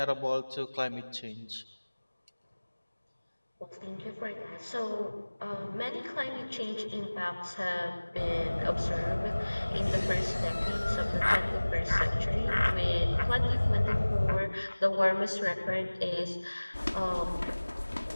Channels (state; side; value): inverted; both; correlation -1.00